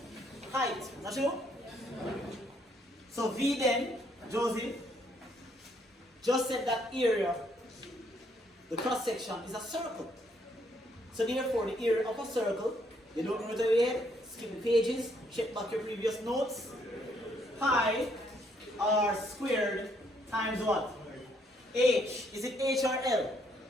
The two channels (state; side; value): normal; both; correlation 0.70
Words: height. Not true? So V then, Josie, just said that area, the cross section, is a circle. So therefore the area of a circle, you don't know it over here, skip the pages, check back your previous notes. Pi r squared times what? H. Is it H or L?